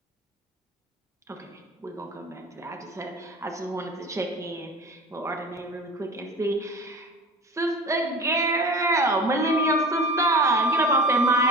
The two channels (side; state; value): both; normal; correlation 0.36